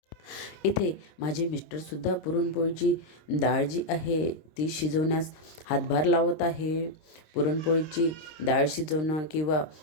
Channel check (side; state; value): right; late; 26 ms